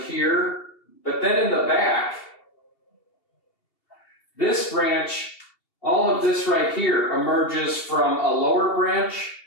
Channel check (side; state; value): right; late; 2.7 ms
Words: here, but then in the back, this branch, all of this right here emerges from a lower branch.